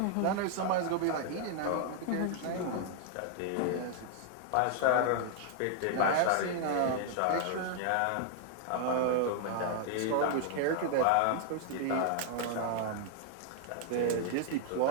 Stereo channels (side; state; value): both; different; correlation 0.00